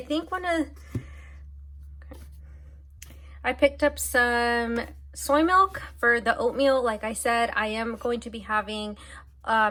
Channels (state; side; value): identical; both; correlation 1.00